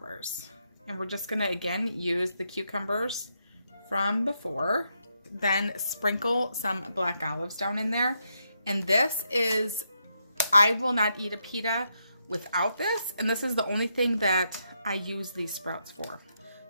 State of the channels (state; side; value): inverted; both; correlation -0.80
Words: And we're just gonna, again, use the cucumbers from before. Then sprinkle some black olives down in there. And this is, I will not eat a pita without this. And this is the only thing that I use these sprouts for.